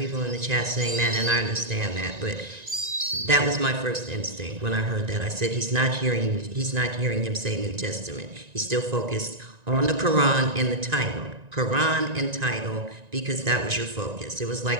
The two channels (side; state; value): left; late; 1.9 ms